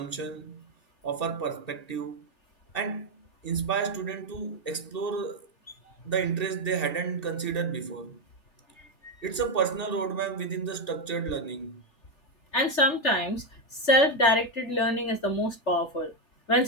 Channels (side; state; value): right; late; 3.4 ms